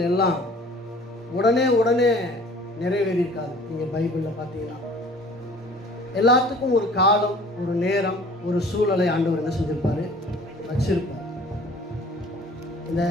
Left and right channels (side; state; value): both; normal; correlation 0.49